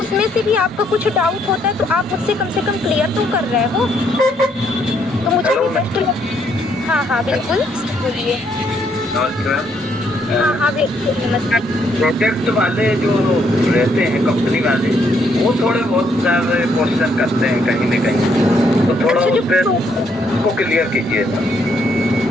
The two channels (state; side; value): normal; both; correlation 0.72